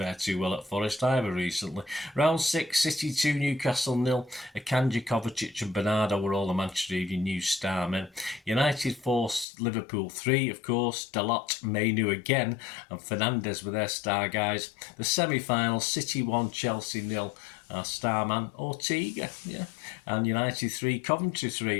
too well at Forest either recently. Round 6, City 2, Newcastle 0. Akanji, Kovacic and Bernardo were all the Manchester Evening News star men. United 4, Liverpool 3, of course. Dalot, M.E.N. again, and Fernandes were their star guys. The semi-final, City 1, Chelsea 0. our starman Ortega, yeah. And United 3, Coventry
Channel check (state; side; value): drops out; right; at 9.5 s